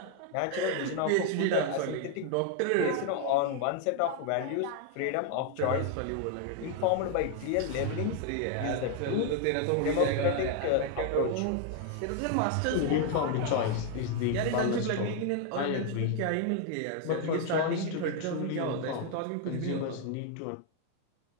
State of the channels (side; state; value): both; different; correlation 0.00